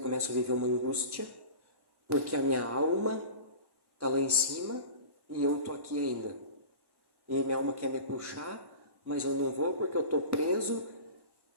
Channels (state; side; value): late; left; 1.1 ms